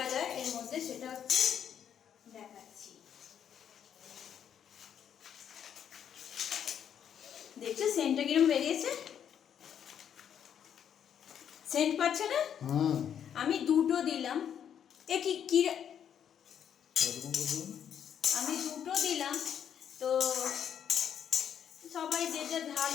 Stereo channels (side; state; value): right; quieter; 8.9 dB